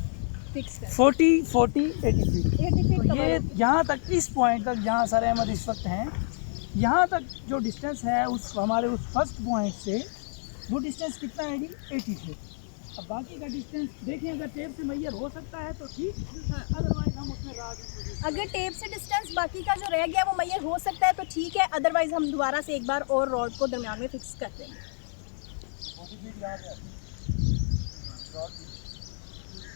फिक्स करें। 40 80 फीट। 80 फीट ये यहाँ तक, इस पॉइंट तक जहाँ सारे अहमद इस वक्त हैं, यहाँ तक जो डिस्टेंस है उस हमारे उस फर्स्ट पॉइंट से वो डिस्टेंस कितना है जी, 80 फीट। अब बाकी का डिस्टेंस देखें, अगर टेप से मैयर हो सकता है तो ठीक, अदरवाइज हम उसमें अगर टेप से डिस्टेंस बाकी का जो रह गया वो मैयर हो सकता है तो ठीक है, अदरवाइज हम दोबारा से एक बार और रॉड को दरमियान में फिक्स कर देंगे।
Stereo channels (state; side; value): silent; right; 59 dB below the other